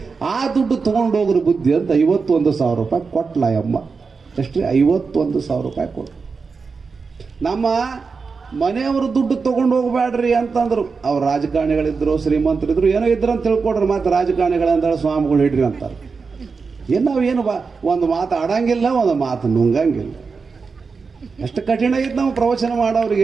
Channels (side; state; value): left; quieter; 4.9 dB